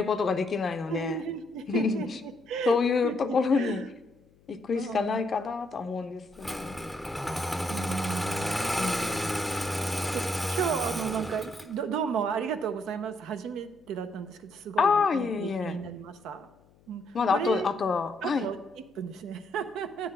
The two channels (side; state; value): left; noise; hum, 30 dB below the sound